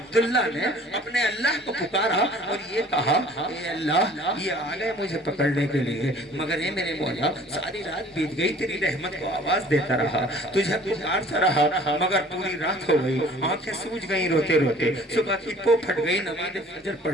نے اپنے اللہ کو پکارا اور یہ کہا, اے اللہ, یہ آ گئے مجھے پکڑنے کے لیے, مگر اے میرے مولا, ساری رات بیت گئی, تیری رحمت کو آواز دیتا رہا, تجھے پکارتا رہا, مگر پوری رات ہو گئی, آنکھیں سوج گئی روتے روتے, صبح کی پو پھٹ گئی, نماز فجر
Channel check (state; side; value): normal; both; correlation 0.51